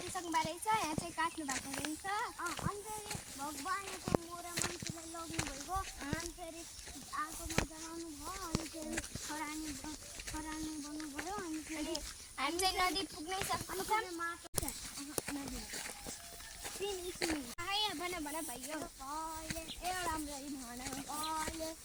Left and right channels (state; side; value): identical; both; correlation 1.00